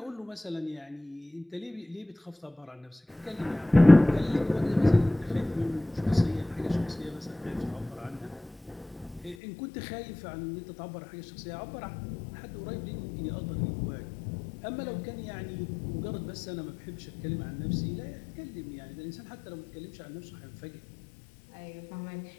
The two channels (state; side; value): drops out; right; at 9.3 s